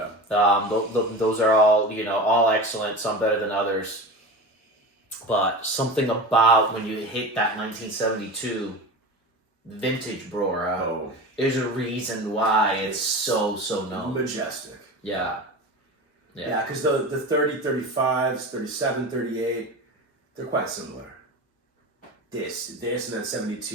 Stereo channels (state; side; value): normal; both; correlation 0.29